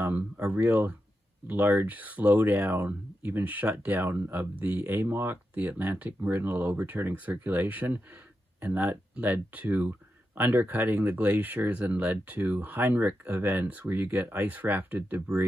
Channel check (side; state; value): both; normal; correlation 0.88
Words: real large slowdown, even shutdown of the AMOC, the Atlantic Meridional Overturning Circulation, and that led to undercutting the glaciers and led to Heinrich Events, where you get ice rafted